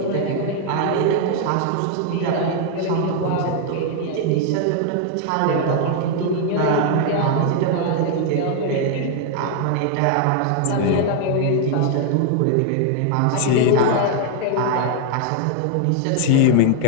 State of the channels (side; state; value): both; different; correlation 0.00